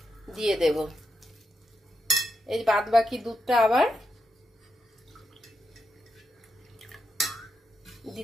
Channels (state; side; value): normal; both; correlation 0.84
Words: দিয়ে দেব। এই বাদ বাকি দুধটা আবার